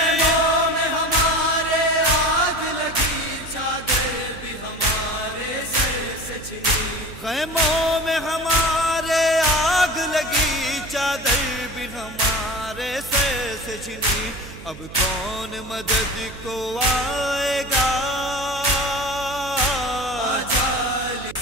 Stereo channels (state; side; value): noise; right; hum, 15 dB below the sound